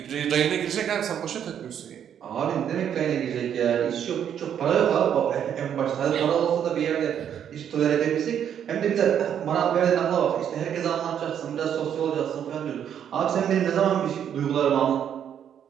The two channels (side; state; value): left; quieter; 9.1 dB